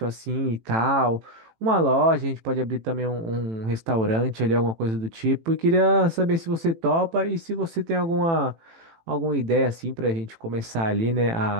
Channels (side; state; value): left; late; 18 ms